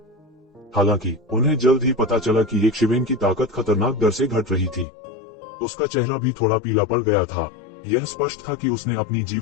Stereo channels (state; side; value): drops out; right; at 4.9 s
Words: हालांकि उन्हें जल्द ही पता चला कि येशिवेन की ताकत खतरनाक दर से घट रही थी। उसका चेहरा भी थोड़ा पीला पड़ गया था। यह स्पष्ट था कि उसने अपनी